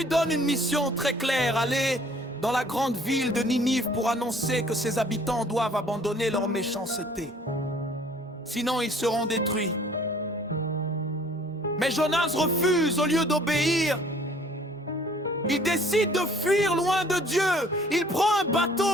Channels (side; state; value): both; normal; correlation 0.55